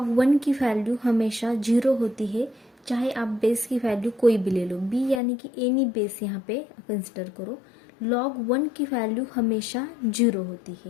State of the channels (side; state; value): right; drops out; at 5.2 s